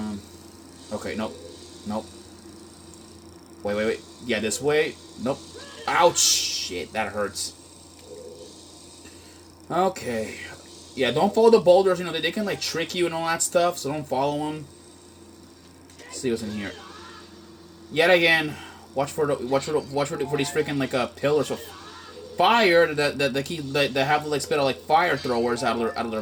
Okay, nope. Nope. Wait. Yeah, this way. Nope. Ouch! Shit, that hurts. Okay. Yeah, don't follow the boulders. You know, they can, like, trick you and all that stuff, so don't follow them. Let's see what's in here. Yet again, watch for these freaking, like, pillars of fire that have, like, spit out, like, fire throwers out of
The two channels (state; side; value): identical; both; correlation 1.00